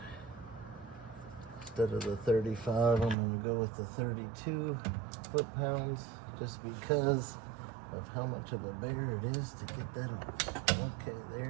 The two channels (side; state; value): left; drops out; at 3.2 s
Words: instead of the 35, I'm going to go with the 32 foot-pounds, just because of how much of a bear it is to get that off. Okay, there